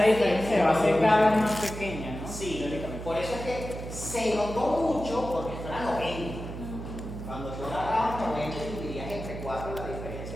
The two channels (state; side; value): noise; right; hum, 9 dB below the sound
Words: diferencia va a ser cada vez más pequeña, ¿no? Sí, Teóricamente. por eso es que se notó mucho porque esto era 90. Cuando tú agarrabas 90 y dividirías entre 4, la